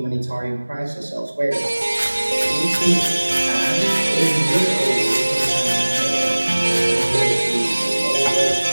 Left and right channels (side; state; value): both; inverted; correlation -1.00